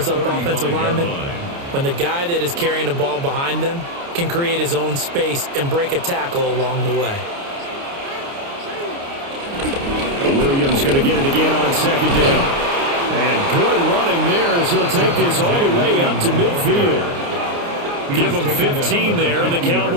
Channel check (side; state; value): left; late; 29 ms